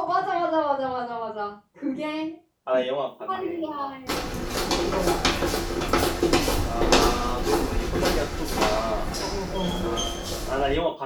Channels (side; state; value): both; identical; correlation 1.00